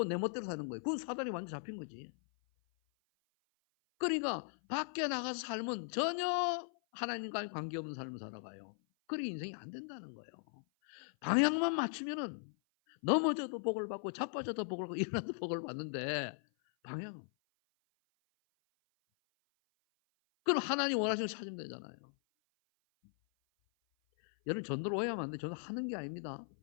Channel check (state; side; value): silent; right; 52 dB below the other